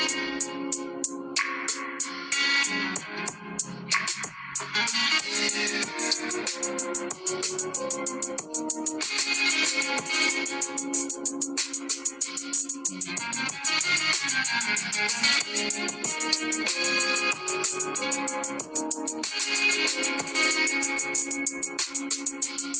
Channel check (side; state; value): both; identical; correlation 1.00